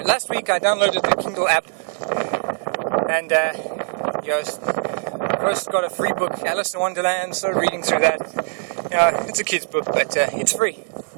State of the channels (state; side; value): silent; left; digital silence